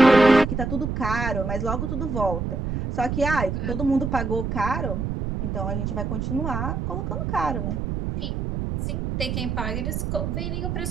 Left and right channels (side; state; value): right; noise; rumble, 2 dB below the sound